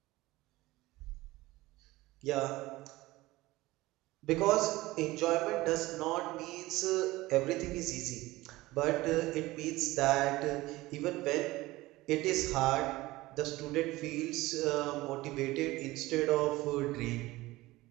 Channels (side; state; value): left; quieter; 19.0 dB